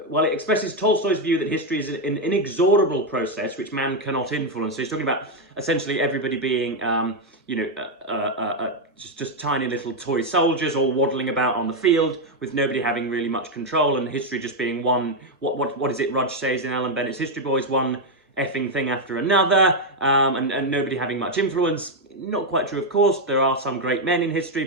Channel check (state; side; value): normal; both; correlation 0.03